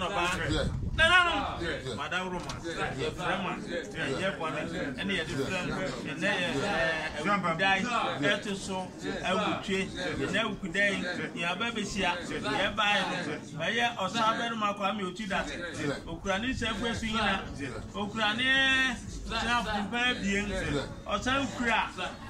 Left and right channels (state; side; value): identical; both; correlation 1.00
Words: na madawroma ye frema ye kwame ene ye different ene dai eto so awutwe ene awukudai ya babesia ye bai no ye osaberu makwame otuda okurani sefu yina okurani snap bien osan kura